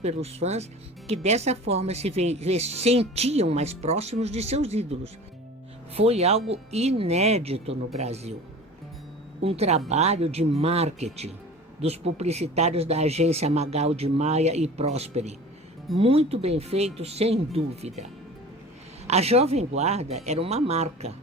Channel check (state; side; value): normal; both; correlation 0.39